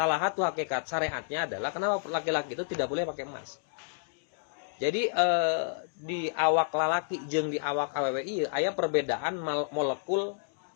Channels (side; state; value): right; silent; digital silence